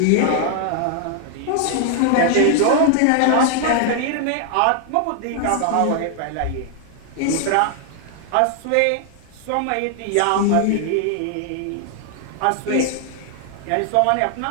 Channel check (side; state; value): both; different; correlation 0.00